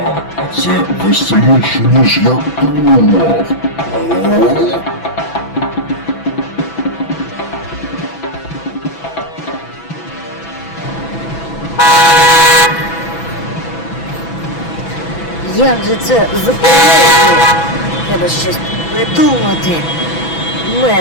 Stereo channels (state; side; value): late; right; 6.0 ms